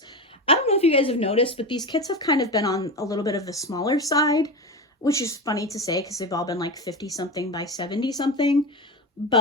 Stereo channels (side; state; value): both; normal; correlation 0.22